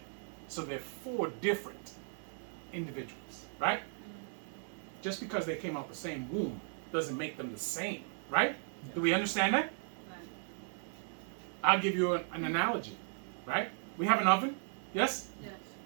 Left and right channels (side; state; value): left; silent; 53 dB below the other